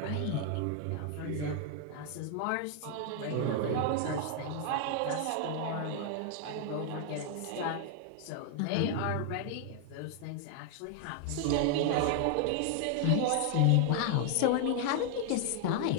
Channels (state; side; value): different; both; correlation 0.00